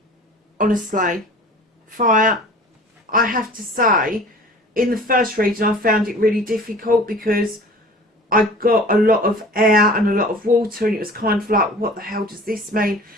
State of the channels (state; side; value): normal; both; correlation 0.43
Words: Honestly, fire. I have to say, in the first reading I found it really difficult because I got a lot of air and a lot of water, and it was kind of like, what the hell does this mean?